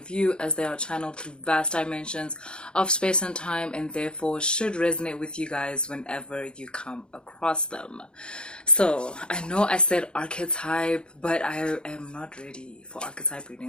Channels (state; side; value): late; right; 0.051 ms